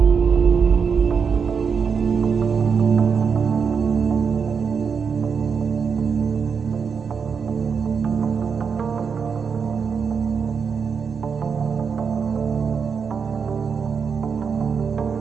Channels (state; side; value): quieter; left; 6.1 dB